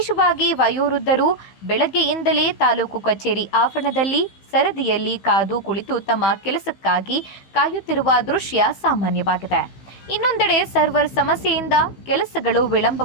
ವಯೋವೃದ್ಧರು ಬೆಳಗ್ಗೆಯಿಂದಲೇ ತಾಲೂಕು ಕಚೇರಿ ಆವರಣದಲ್ಲಿ ಸರದಿಯಲ್ಲಿ ಕಾದು ಕುಳಿತು ತಮ್ಮ ಕೆಲಸಕ್ಕಾಗಿ ಕಾಯುತ್ತಿರುವ ದೃಶ್ಯ ಸಾಮಾನ್ಯವಾಗಿದೆ. ಇನ್ನೊಂದೆಡೆ ಸರ್ವರ್ ಸಮಸ್ಯೆಯಿಂದ ಕೆಲಸಗಳು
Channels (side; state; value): right; late; 15 ms